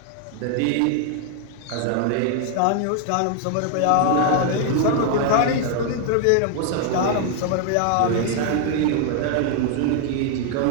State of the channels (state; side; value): different; both; correlation 0.00